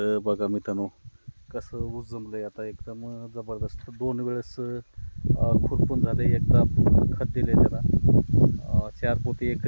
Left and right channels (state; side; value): inverted; both; correlation -1.00